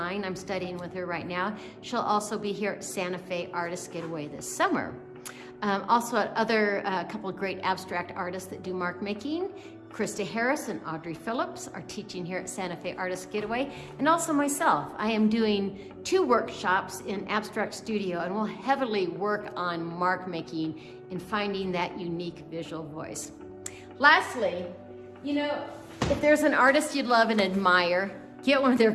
I'm studying with her right now. She'll also be here at Santa Fe Artist Getaway this summer. Also at other couple of great abstract artists that do mark making. Krista Harris and Audrey Phillips are teaching here at Santa Fe Artist Getaway, and also myself. I am doing 2 workshops in Abstract Studio, and we'll heavily work on mark making and finding that unique visual voice. Lastly, you know, if there's an artist you love and admire, get one of their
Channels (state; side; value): identical; both; correlation 1.00